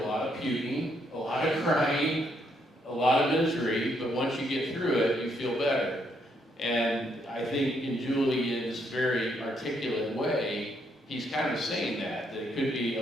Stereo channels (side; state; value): both; normal; correlation 0.74